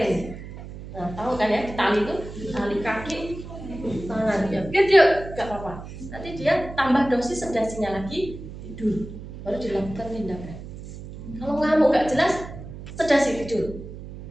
Nah tahu kan ya, ditali itu tali kaki, tangan ya, biar dia nggak apa-apa. Nanti dia tambah dosis sedasinya lagi, tidur, baru dilakukan tindakan. Kalau ngamuk nggak jelas, sedasi tidur.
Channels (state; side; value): noise; right; hum, 12 dB below the sound